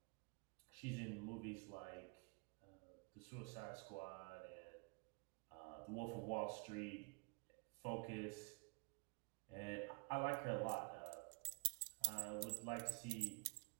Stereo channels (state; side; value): quieter; left; 31.2 dB